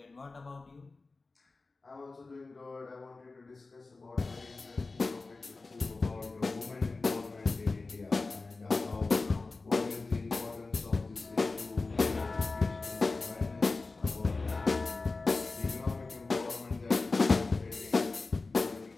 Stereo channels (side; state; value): right; quieter; 3.7 dB